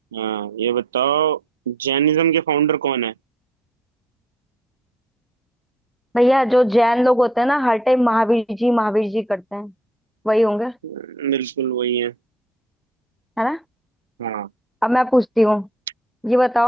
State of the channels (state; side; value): normal; both; correlation 0.62